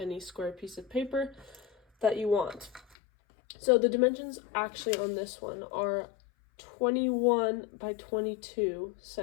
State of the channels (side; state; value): right; drops out; at 3.0 s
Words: square piece of paper that you want. So the dimensions actually on this one are 21 by 22